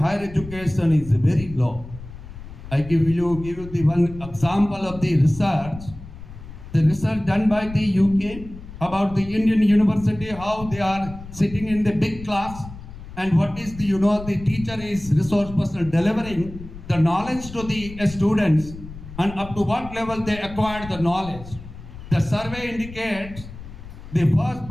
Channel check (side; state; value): left; noise; rumble, 14 dB below the sound